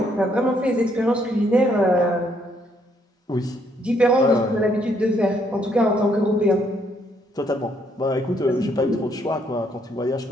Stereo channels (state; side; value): normal; both; correlation 0.70